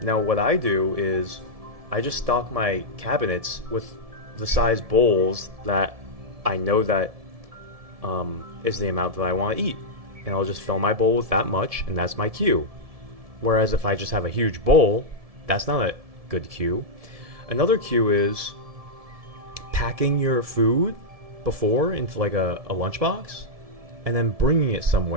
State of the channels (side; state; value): left; late; 1.7 ms